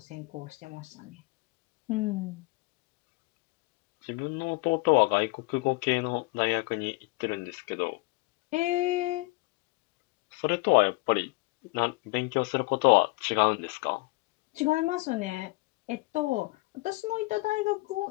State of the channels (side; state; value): right; quieter; 23.7 dB